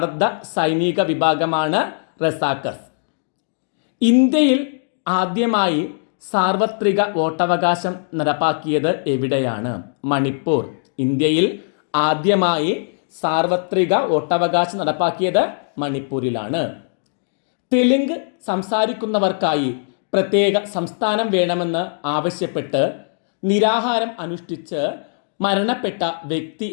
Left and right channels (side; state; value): right; silent; digital silence